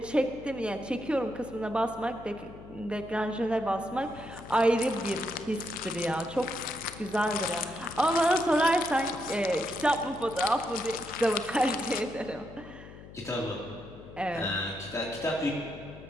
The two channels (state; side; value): noise; left; hum, 16 dB below the sound